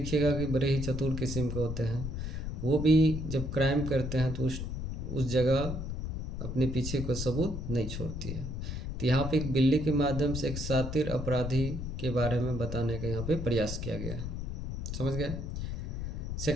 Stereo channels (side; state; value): left; noise; rumble, 4 dB below the sound